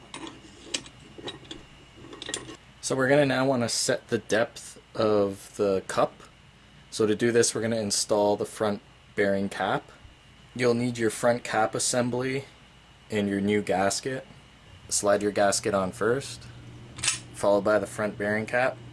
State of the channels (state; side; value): identical; both; correlation 1.00